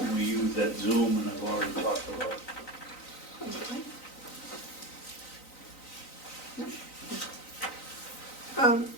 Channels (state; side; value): late; right; 3.9 ms